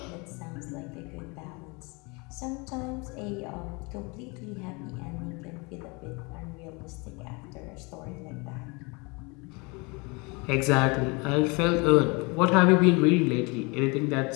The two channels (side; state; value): right; quieter; 28.7 dB